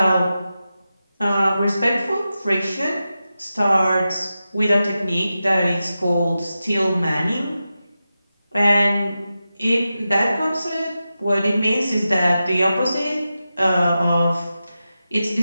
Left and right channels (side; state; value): both; inverted; correlation -0.92